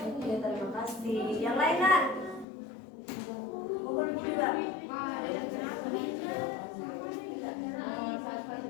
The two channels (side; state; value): right; drops out; at 2.5 s